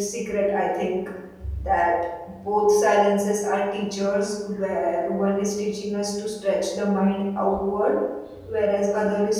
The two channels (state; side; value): identical; both; correlation 1.00